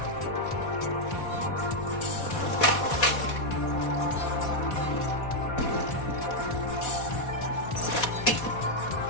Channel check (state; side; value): late; right; 4.2 ms